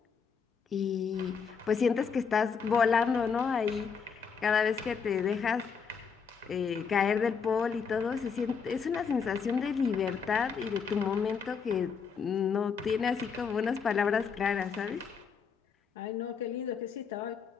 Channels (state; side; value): quieter; right; 6.1 dB